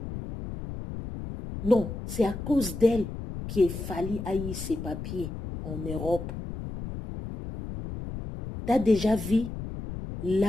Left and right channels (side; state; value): left; noise; rumble, 8 dB below the sound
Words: Non, c'est à cause d'elle qu'il fallait haïr ses papiers. en Europe. Tu as déjà vu